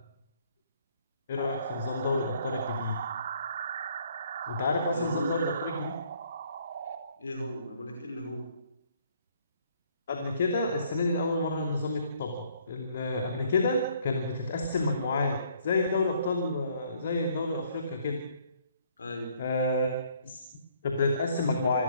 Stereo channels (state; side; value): inverted; both; correlation -0.64